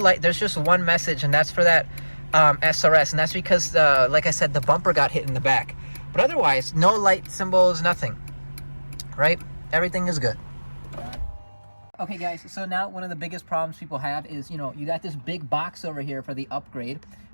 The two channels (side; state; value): both; inverted; correlation -1.00